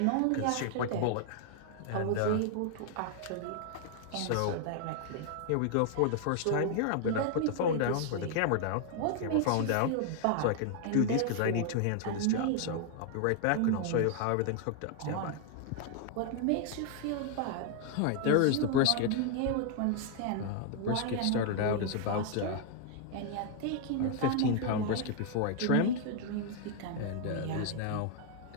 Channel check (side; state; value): both; different; correlation 0.00